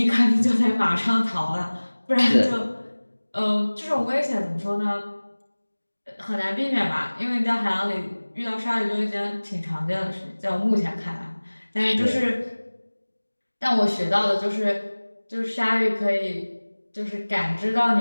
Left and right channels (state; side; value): inverted; both; correlation -1.00